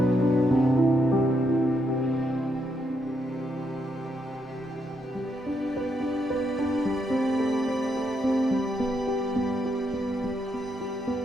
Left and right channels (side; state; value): both; normal; correlation 0.78